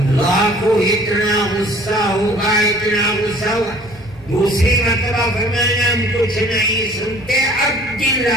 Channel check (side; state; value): both; normal; correlation 0.51